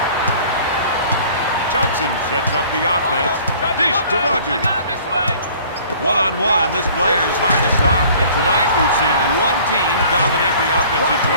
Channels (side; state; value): both; inverted; correlation -0.50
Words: Johnson sets up the offense. Dish to Rogers. I got it this way. One-on-one, this player is hard to stop. Tonight, we've seen one team dominate the offensive